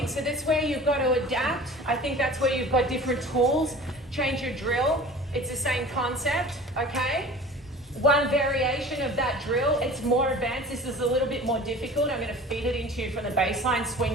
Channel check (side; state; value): both; normal; correlation 0.41